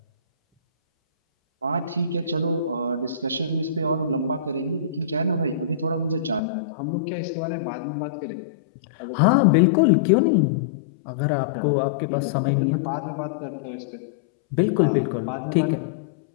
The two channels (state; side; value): drops out; right; at 6.4 s